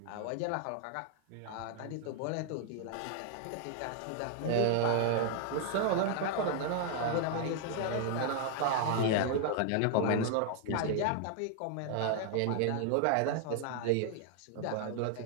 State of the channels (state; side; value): different; both; correlation 0.00